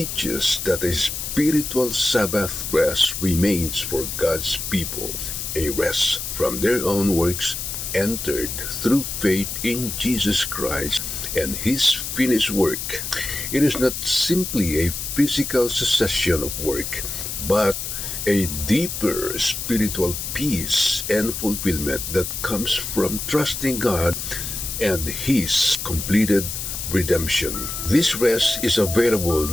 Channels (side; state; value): left; noise; hiss, 5 dB below the sound